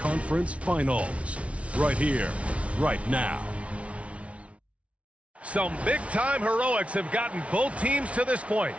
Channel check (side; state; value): left; late; 0.063 ms